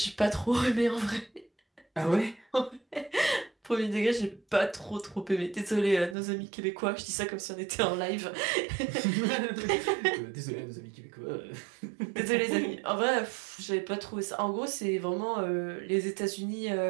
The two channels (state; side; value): drops out; left; at 6.2 s